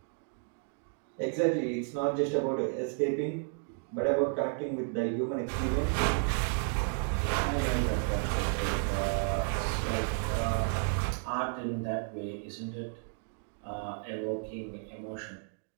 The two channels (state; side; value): silent; left; 56 dB below the other